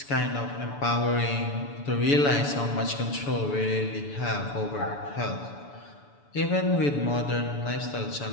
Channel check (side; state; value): right; late; 7.0 ms